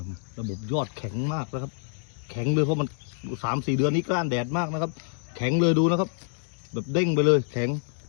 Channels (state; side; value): silent; right; digital silence